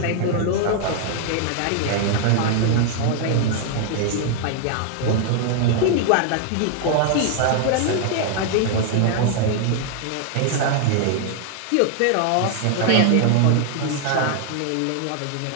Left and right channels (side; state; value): both; different; correlation 0.00